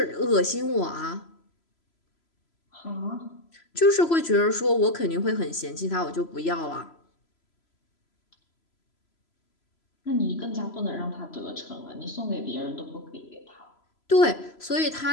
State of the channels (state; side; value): late; right; 3.0 ms